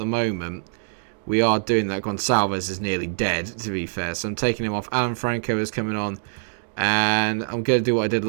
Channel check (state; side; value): silent; left; digital silence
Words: moment, we are doing that. Gonçalves is nearly dead, to be fair, so I'm taking him off. Alan Franco is coming on. And I'm going to do what I did